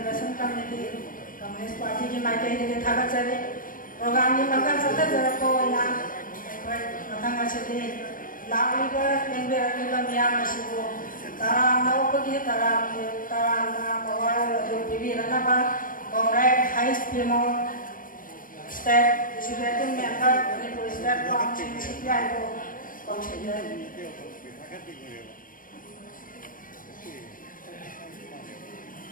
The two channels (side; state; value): right; late; 0.40 ms